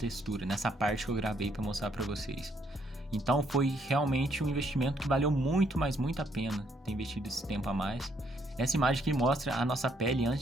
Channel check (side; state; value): both; normal; correlation 0.70